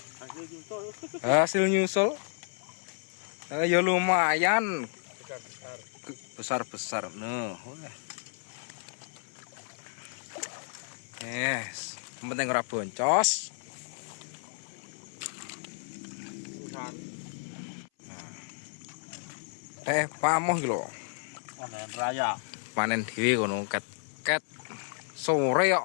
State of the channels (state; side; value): silent; right; 57 dB below the other